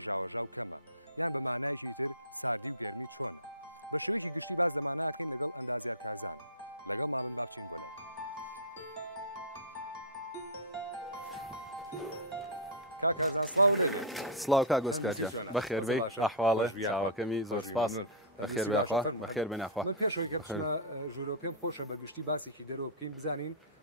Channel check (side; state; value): both; normal; correlation -0.16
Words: سڵاو کا گۆسکارجە بەخێر بێ ئەحواڵە چاوەکەمی زۆر سپاس بەخێر بێخوا بەخێر بێناخوا ژوورۆ پێم خۆشە بەگشتی باسێکی دەرەوە بکەین بزانین